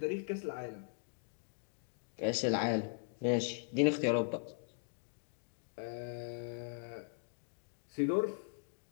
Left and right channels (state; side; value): silent; right; digital silence